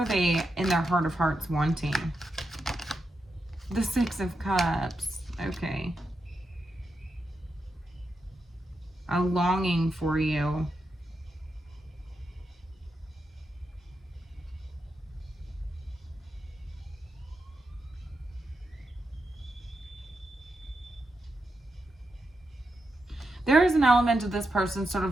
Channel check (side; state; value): both; normal; correlation 0.86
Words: they in their heart of hearts wanting? The Six of Cups. Okay. A longing for you. There is an element of this person sort